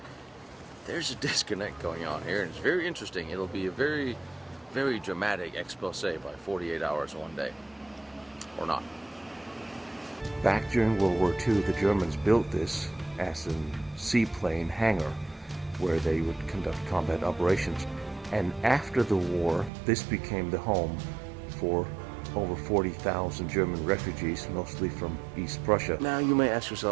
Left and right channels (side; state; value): left; drops out; at 19.7 s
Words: There's a disconnect going on here, and it's very interesting. It'll be a very, very dramatic expose by 48 hours one day, or not. Back during World War II, the Germans built this as a seaplane hangar where they would conduct combat operations. And after the war, this became the home for over 40,000 German refugees, mostly from East Prussia. Now you may ask